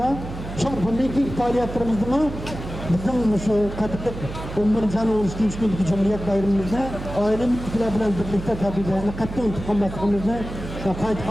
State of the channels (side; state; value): right; noise; hum, 9 dB below the sound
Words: Çok bundaki faaliyetlerimizde mi bizim şu katılık 11. ayın 13. gündeki Cumhuriyet bayramımızda aile müttefikler bilen birlikte tabilerini katlı unutulmasımızı kayıt